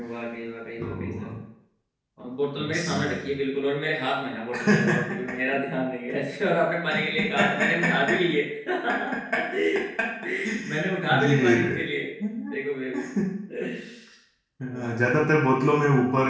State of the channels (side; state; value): both; identical; correlation 1.00